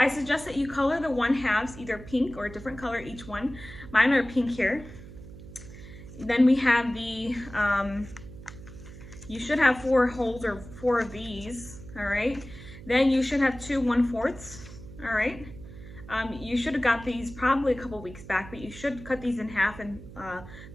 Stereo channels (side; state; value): right; noise; hum, 15 dB below the sound